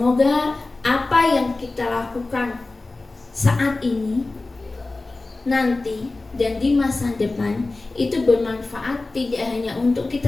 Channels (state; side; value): quieter; right; 3.3 dB